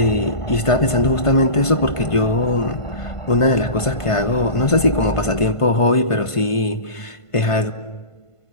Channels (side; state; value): right; late; 1.5 ms